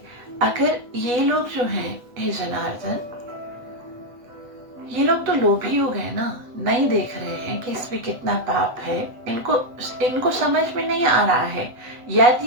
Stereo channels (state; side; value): late; left; 8.0 ms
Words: अगर ये लोग जो हैं, हे जनार्दन, ये लोग तो लोभी हो गए ना, नहीं देख रहे हैं कि इसमें कितना पाप है, इनको समझ में नहीं आ रहा है।